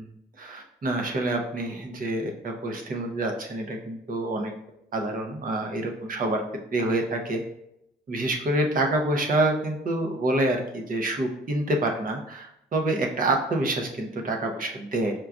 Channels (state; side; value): normal; both; correlation 0.48